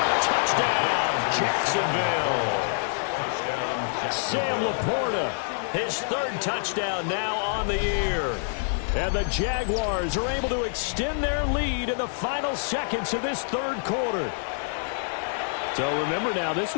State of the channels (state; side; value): silent; right; digital silence